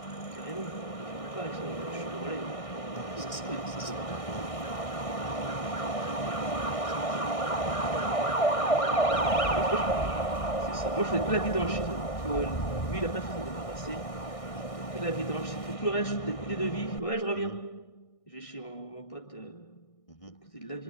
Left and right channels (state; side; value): late; right; 1.6 ms